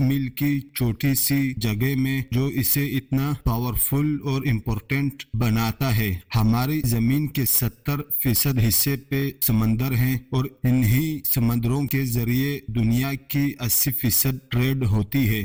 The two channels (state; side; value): identical; both; correlation 1.00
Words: کی چھوٹی سی جگہ میں جو اسے اتنا پاورفل اور امپورٹنٹ بناتا ہے؟ ہماری زمین کے 70% حصے پہ سمندر ہیں، اور انہی سمندروں کے ذریعے دنیا کی 80% ٹریڈ ہوتی ہے۔